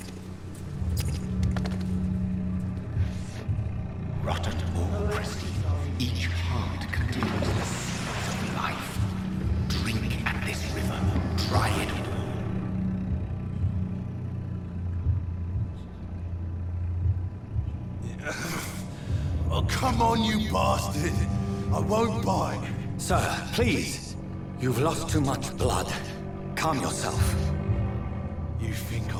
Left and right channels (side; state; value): both; identical; correlation 1.00